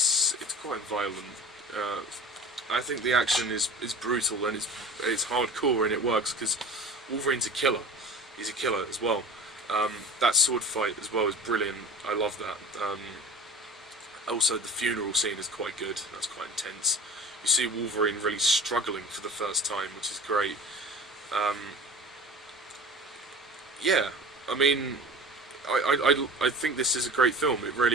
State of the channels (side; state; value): both; normal; correlation 0.37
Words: quite violent. I think the action is brutal, and it's hardcore, and it works because Wolverine's a killer. He's a killer as well. That sword fight as well is brilliant. I love that. Also, the funeral scene is quite good. That's quite intense. You see Wolverine really struggling for the first time, which is great. Yeah, I mean, I think this is a great film. It